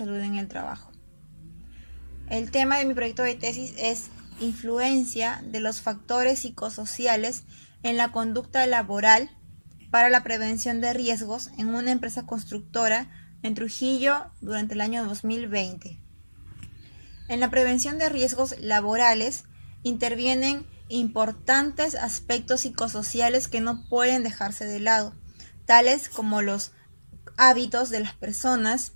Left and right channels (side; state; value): both; inverted; correlation -1.00